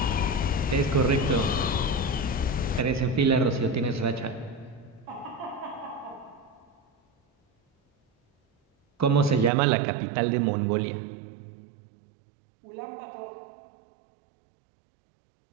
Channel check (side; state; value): left; drops out; at 9.5 s